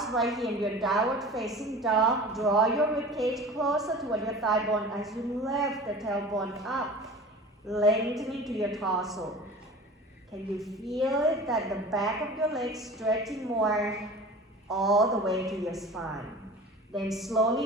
right here in your downward facing dog. Draw your ribcage closer toward your thigh bone as you lift the tailbone up, lengthening to your torso. Can you feel it that the back of your legs stretching more all the way to your spine? Then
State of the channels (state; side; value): normal; both; correlation 0.38